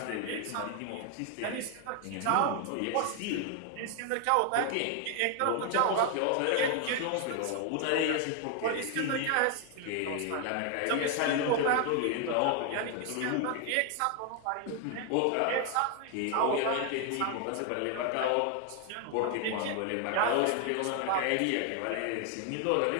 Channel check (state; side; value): different; both; correlation 0.00